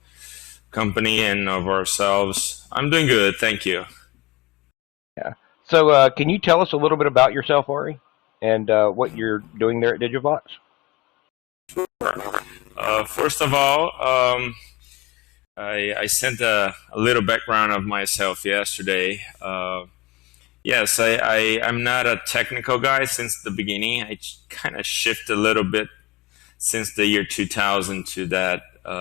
company and of ourselves. I'm doing good. Thank you. Yeah. So can you tell us a little bit about yourself, Ari, and what you're doing there at Digivox? First of all, I sent a little background of myself yesterday. Yes, I'm not a technical guy since the beginning. I kind of shift a little bit since the year 2000 to that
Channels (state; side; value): quieter; right; 22.0 dB